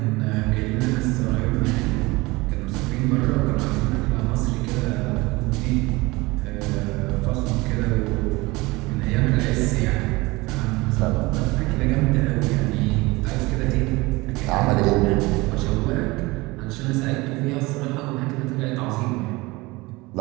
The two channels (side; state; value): left; quieter; 22.4 dB